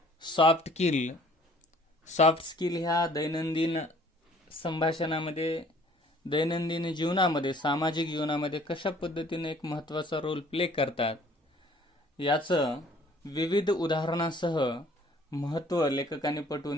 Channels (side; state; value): both; normal; correlation 0.56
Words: सॉफ्ट स्किल ह्या दैनंदिन संभाषणामध्ये, दैनंदिन जीवनामध्ये, सामाजिक जीवनामध्ये कशा पद्धतीने एक महत्त्वाचा रोल प्ले करतात याचं विविध उदाहरणासह महत्त्व लेखकाने